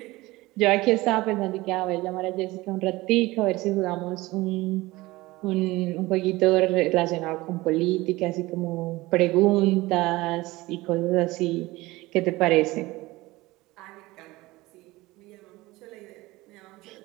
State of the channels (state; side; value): quieter; left; 20.0 dB